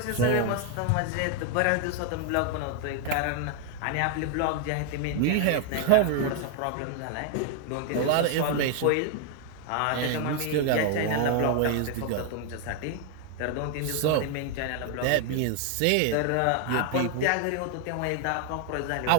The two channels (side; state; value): both; different; correlation 0.00